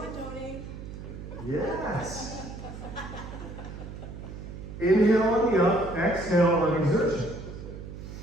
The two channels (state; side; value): noise; right; hum, 11 dB below the sound